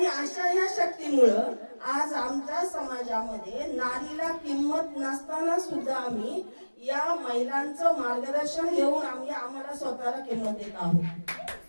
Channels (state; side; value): inverted; both; correlation -1.00